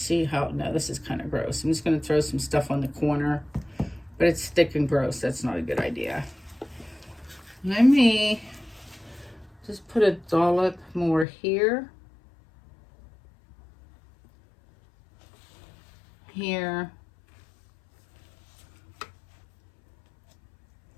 how, no, this is kind of gross. I'm just going to throw some stuff on the corner, but it's thick and gross. That's not a good idea. Let me just put a dollop more here. Here.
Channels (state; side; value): drops out; right; at 11.2 s